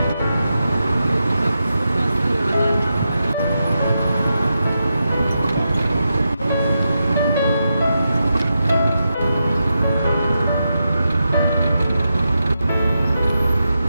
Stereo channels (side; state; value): both; inverted; correlation -0.87